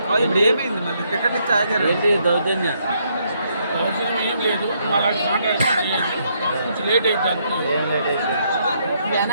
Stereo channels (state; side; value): inverted; both; correlation -0.73